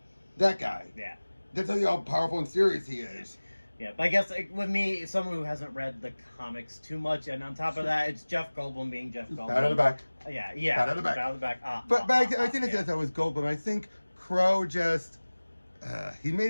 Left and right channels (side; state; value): both; inverted; correlation -1.00